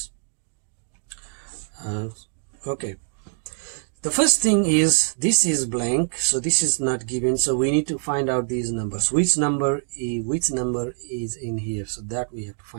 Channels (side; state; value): left; silent; digital silence